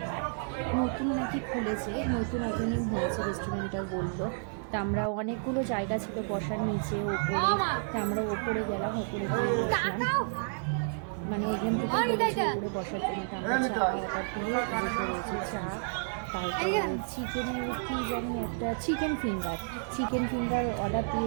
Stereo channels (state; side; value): silent; left; digital silence